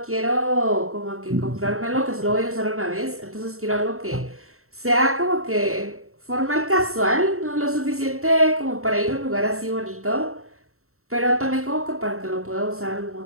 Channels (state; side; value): late; left; 0.63 ms